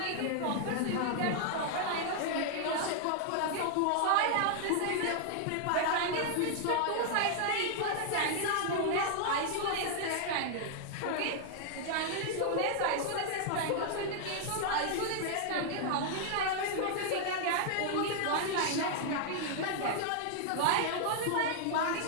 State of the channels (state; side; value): different; both; correlation -0.01